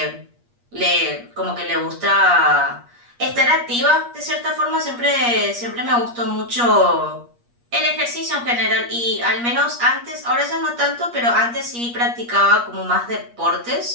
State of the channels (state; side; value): late; left; 8.4 ms